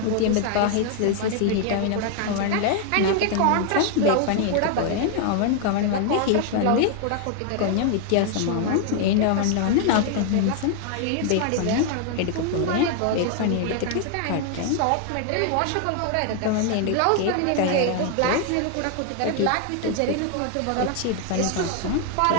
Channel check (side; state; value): both; different; correlation 0.00